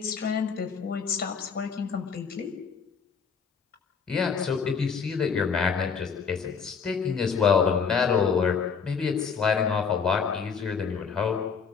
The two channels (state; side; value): quieter; right; 6.0 dB